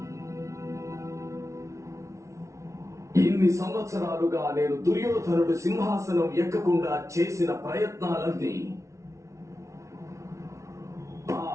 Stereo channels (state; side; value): late; left; 0.14 ms